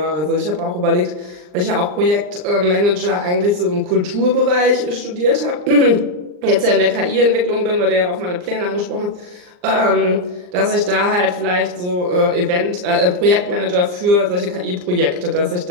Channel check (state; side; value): late; left; 39 ms